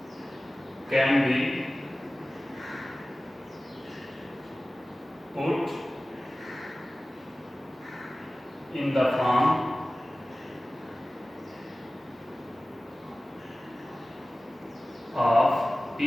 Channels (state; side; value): normal; both; correlation 0.97